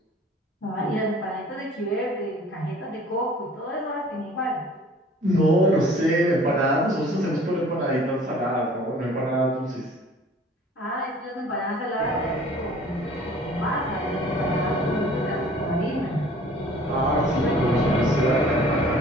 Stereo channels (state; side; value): normal; both; correlation 0.50